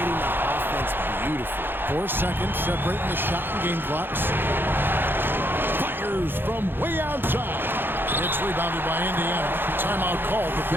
the offense beautifully. 4 seconds separating the shot and game clocks. Fires from way outside. It's rebounded by Indiana. Timeout called the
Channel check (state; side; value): late; left; 0.10 ms